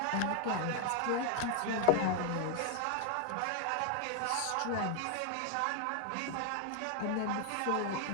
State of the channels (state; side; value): different; both; correlation 0.00